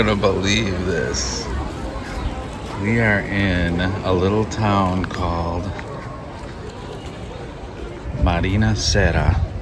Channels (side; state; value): both; identical; correlation 1.00